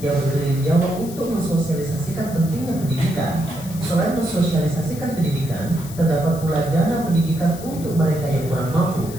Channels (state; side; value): noise; left; hiss, 15 dB below the sound